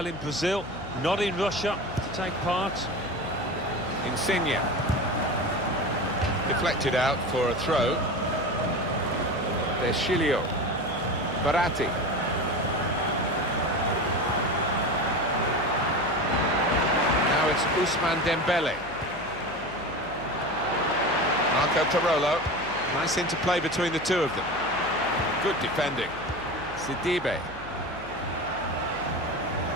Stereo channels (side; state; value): left; noise; hum, 17 dB below the sound